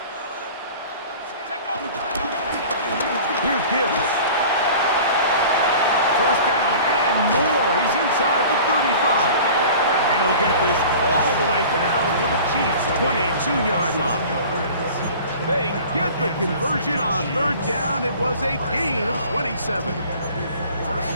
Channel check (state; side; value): inverted; both; correlation -0.42